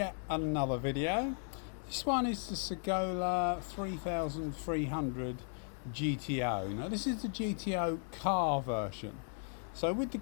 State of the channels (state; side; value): silent; right; 54 dB below the other